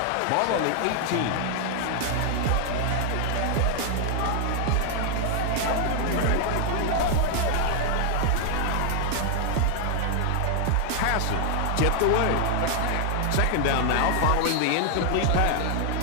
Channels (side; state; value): both; different; correlation 0.00